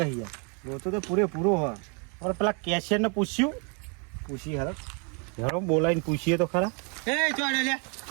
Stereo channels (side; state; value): left; quieter; 36.2 dB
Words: યાર લોચો તો પૂરો હોય અને પેલા કેશિયર ને પૂછ્યું પૂછી હરો હેરો બોલાવીને પૂછીએ તો ખરા એ ચોડે લે